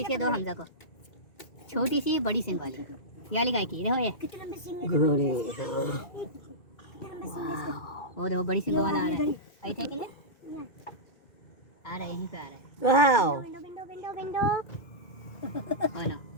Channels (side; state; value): right; late; 2.3 ms